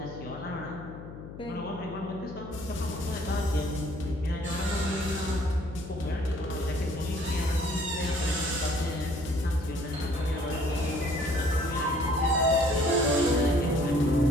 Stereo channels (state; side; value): noise; left; hum, 13 dB below the sound